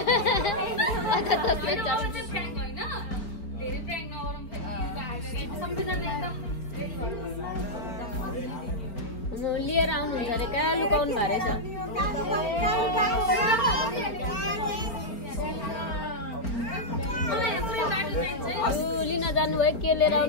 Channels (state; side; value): late; right; 4.4 ms